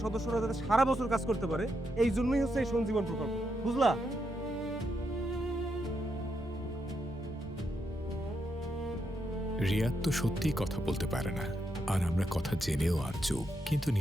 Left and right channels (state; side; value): normal; both; correlation 0.81